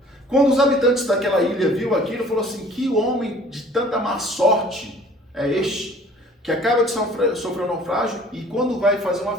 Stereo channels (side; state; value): both; normal; correlation 0.51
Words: Quando os habitantes daquela ilha viu aquilo, falou assim: que homem de tanta má sorte é este, que acaba de sofrer um naufrágio e quando vai fazer uma